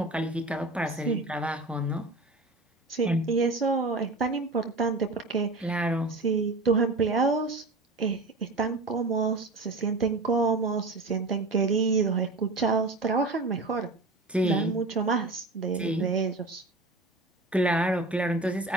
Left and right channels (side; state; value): left; quieter; 3.1 dB